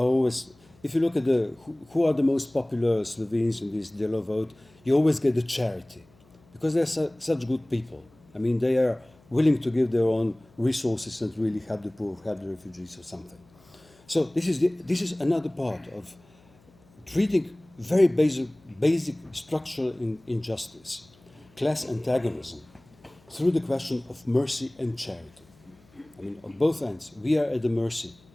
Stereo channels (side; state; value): left; noise; hum, 29 dB below the sound